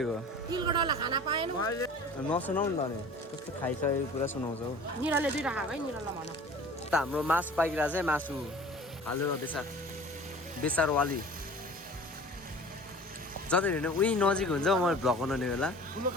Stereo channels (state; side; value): normal; both; correlation 0.43